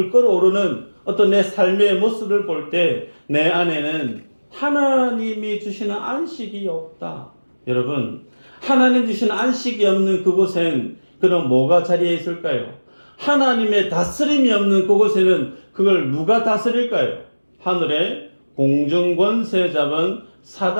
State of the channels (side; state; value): both; inverted; correlation -1.00